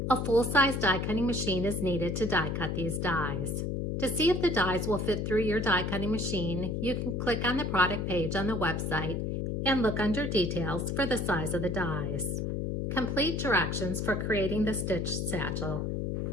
A full-size die cutting machine is needed to die cut these dies. To see if the dies will fit through your die cutting machine, you can click on the product page on the website and look under details for the size of the dies. Complete directions for creating the stitched satchel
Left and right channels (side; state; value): left; noise; hum, 1 dB below the sound